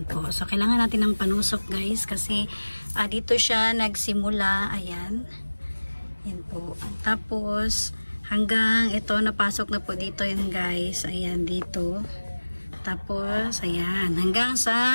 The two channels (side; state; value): both; inverted; correlation -1.00